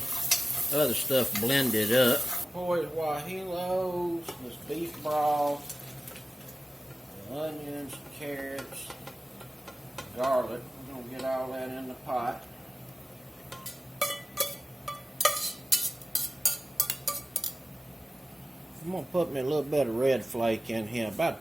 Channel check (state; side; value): normal; both; correlation 0.95